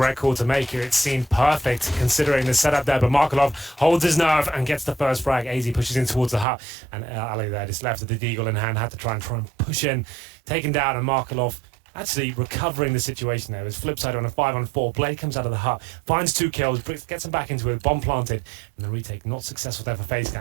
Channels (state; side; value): drops out; left; at 6.5 s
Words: call to make here. It seemed perfect considering the setup there, but Markelov holds his nerve and gets the first frag. AZ pushes in towards the Hut, and Ali there just left with the deagle in hand, had to try and push in, taken down, and Markelov actually recovering the situation there. It was FlipSid on a 5-on-4. Blade comes out of the Hut, finds 2 kills, gets him back into it, bomb planted, and the retake not successful there for FaZe.